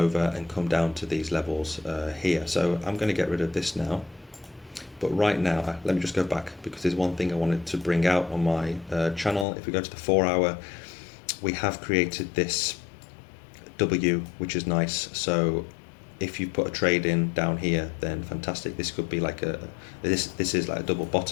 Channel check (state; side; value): drops out; right; at 9.5 s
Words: and come down to these levels here. So I'm going to get rid of this now. But right now, let me just go back, because there's one thing I wanted to bring out on my channel. If we go to the 4 hour, we have created this W, which is nice. So if you put a trade in down here, then fantastic. This could be like this is like a double